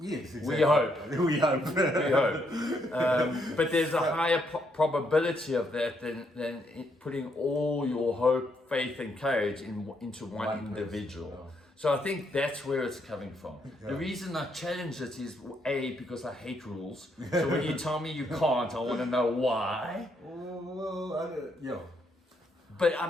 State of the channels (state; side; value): normal; both; correlation 0.75